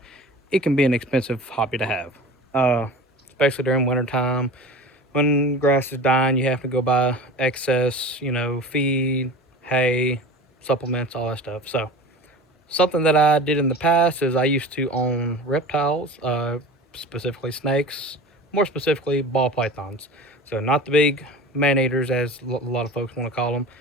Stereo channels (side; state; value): both; normal; correlation 0.36